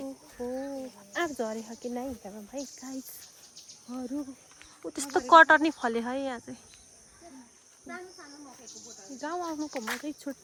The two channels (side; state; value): both; identical; correlation 1.00